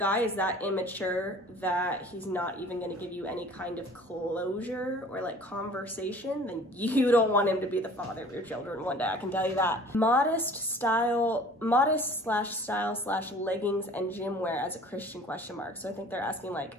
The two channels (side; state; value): both; normal; correlation 0.48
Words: is that immature that he's not even going to give you any kind of closure or like conversation, then you don't want him to be the father of your children one day, I can tell you that. Modest style slash leggings and gym wear as a Christian ? So I think they're asking like